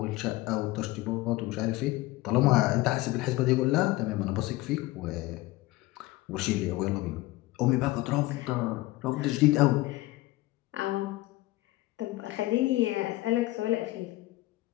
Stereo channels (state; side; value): quieter; right; 18.8 dB